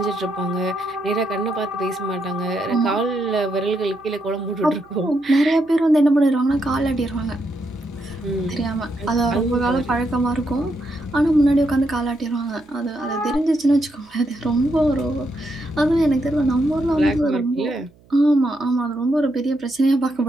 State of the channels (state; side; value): noise; right; hum, 29 dB below the sound